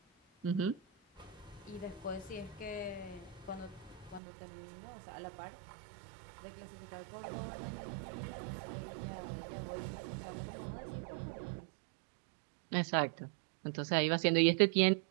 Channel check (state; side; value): drops out; left; at 4.2 s